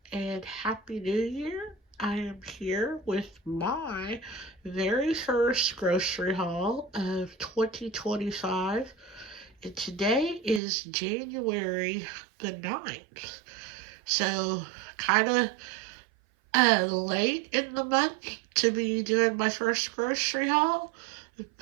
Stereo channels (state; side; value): drops out; left; at 10.6 s